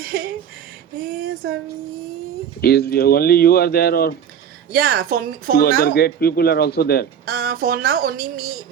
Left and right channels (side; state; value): left; quieter; 8.4 dB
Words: Swami. Is only you are there, or Yeah, for two other now, great people are also there? for now only